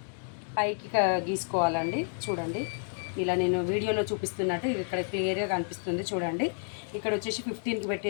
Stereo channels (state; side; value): silent; right; 55 dB below the other